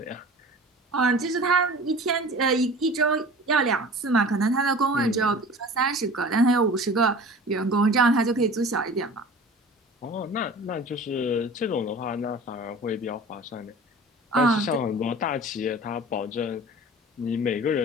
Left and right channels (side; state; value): both; normal; correlation 0.41